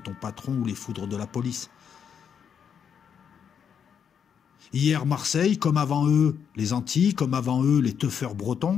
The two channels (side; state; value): right; quieter; 7.6 dB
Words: patron ou les foudres de la police. Hier, Marseille, comme avant eux, les Antilles, comme avant eux, les teufeurs